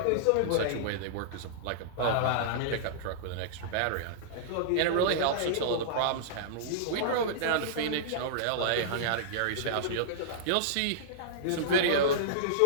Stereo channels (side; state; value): both; different; correlation -0.02